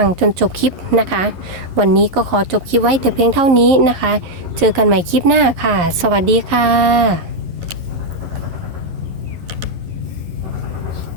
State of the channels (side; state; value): left; late; 11 ms